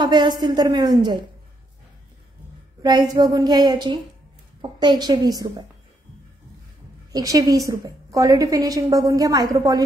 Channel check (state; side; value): normal; both; correlation 0.76